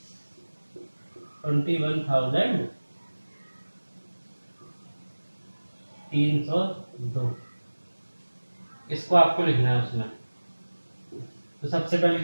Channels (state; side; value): inverted; both; correlation -1.00